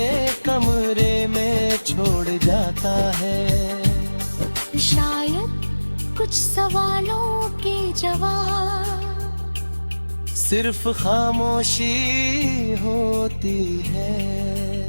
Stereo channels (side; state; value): both; inverted; correlation -1.00